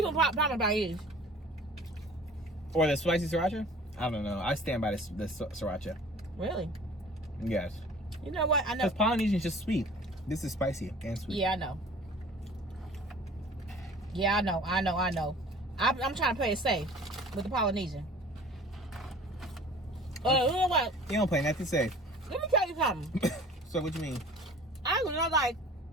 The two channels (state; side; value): normal; both; correlation 0.46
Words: probably about is. Or the spicy sriracha? I don't know. I stand by the sriracha. Really? Yes. You know what? I know. Because Polynesian is just sweet. This is spicy and sweet. Yeah, I know. Yeah, I know. I'm trying to play it safe with the Polynesian. You know what? You don't play nothing safe. Let me tell you something. So what you mean? I was not like,